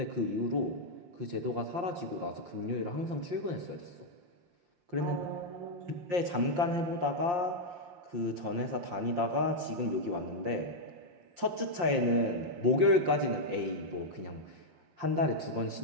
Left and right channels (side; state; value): left; late; 5.7 ms